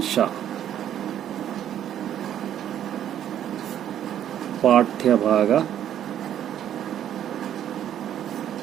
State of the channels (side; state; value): left; quieter; 10.6 dB